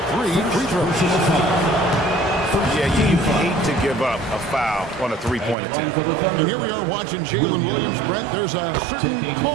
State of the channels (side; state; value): left; drops out; at 5.6 s